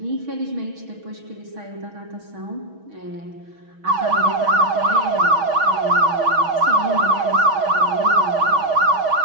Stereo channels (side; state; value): left; late; 6.2 ms